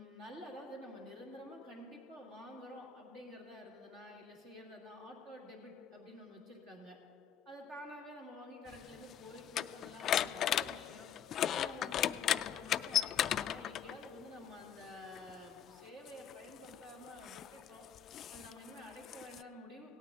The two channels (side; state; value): right; quieter; 8.9 dB